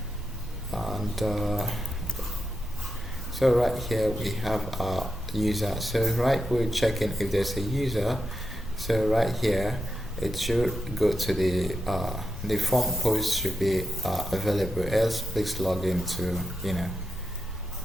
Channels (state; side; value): normal; both; correlation 0.87